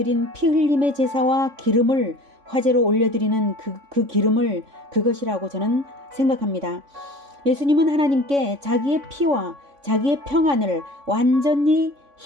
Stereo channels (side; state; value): left; late; 3.6 ms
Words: 피 흘림의 제사와 기름을 화제로 올려드리는 그 기름을 그것이라고 저는 생각합니다. 예수님은 하나님께 자기의 피와 자기의 평안을 완전히